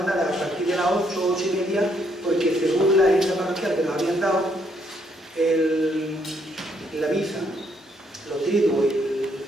a partir de las 8, 8:30, porque según la agenda parroquial que nos habían dado, la misa, los triduos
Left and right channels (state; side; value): normal; both; correlation 0.72